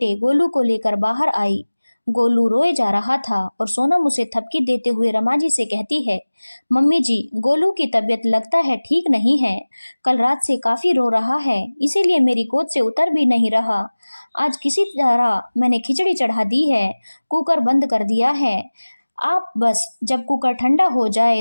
गोलू को लेकर बाहर आई। गोलू रोए जा रहा था और सोनम उसे थपकी देते हुए रमा जी से कहती है, मम्मी जी, गोलू की तबीयत लगता है ठीक नहीं है। कल रात से काफी रो रहा है, इसीलिए मेरी गोद से उतर भी नहीं रहा। आज किसी तरह मैंने खिचड़ी चढ़ा दी है, कुकर बंद कर दिया है। आप बस जब कुकर ठंडा हो जाए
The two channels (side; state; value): both; inverted; correlation -1.00